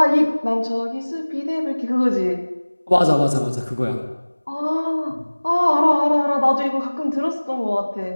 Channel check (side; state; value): both; inverted; correlation -1.00